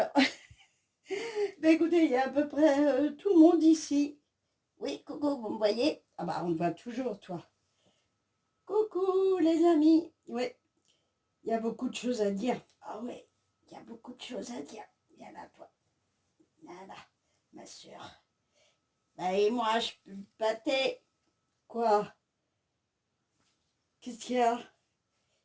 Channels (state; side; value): identical; both; correlation 1.00